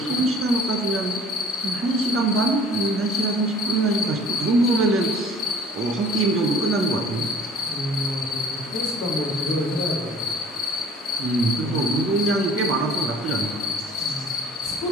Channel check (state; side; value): normal; both; correlation 0.51